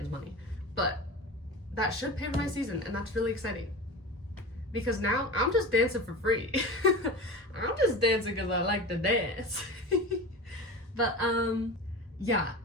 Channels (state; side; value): normal; both; correlation 0.30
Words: money. But that should pay for my season, and that's really exciting. Because now, I'm just dancing for free. I'm just dancing because I like to dance. But, yeah,